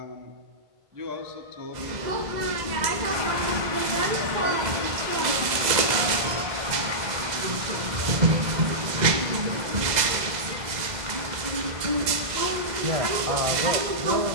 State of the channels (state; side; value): late; left; 2.0 ms